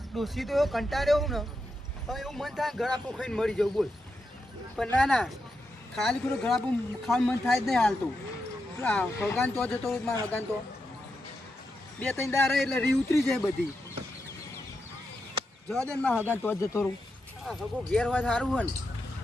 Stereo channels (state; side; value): normal; both; correlation 0.86